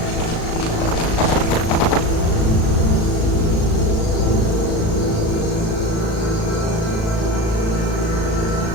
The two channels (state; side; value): late; right; 37 ms